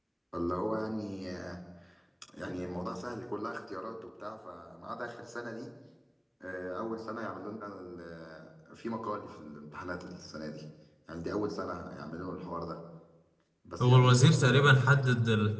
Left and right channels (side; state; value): both; identical; correlation 1.00